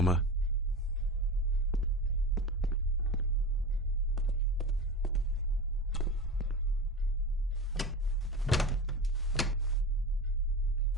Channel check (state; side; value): normal; both; correlation 0.28